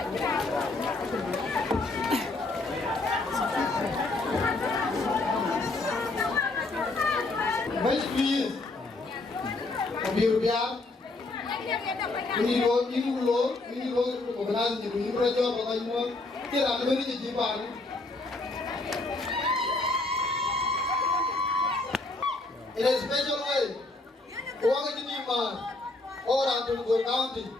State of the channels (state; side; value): quieter; right; 3.1 dB